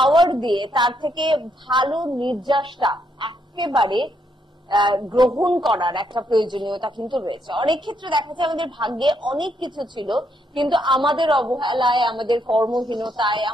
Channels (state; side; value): normal; both; correlation 0.75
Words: দিয়ে তার থেকে ভালো নির্যাসটা একেবারে গ্রহণ করার একটা প্রয়োজনীয়তা কিন্তু রয়েছে। অনেক ক্ষেত্রে দেখা যায় আমাদের ভাগ্যে অনেক কিছু ছিল, কিন্তু আমাদের অবহেলায়, আমাদের কর্মহীনতায়,